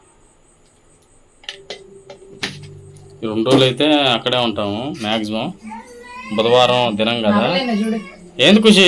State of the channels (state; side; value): identical; both; correlation 1.00